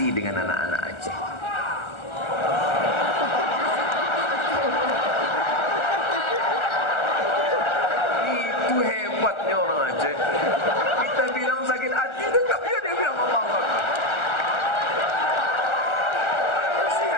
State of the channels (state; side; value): late; right; 1.4 ms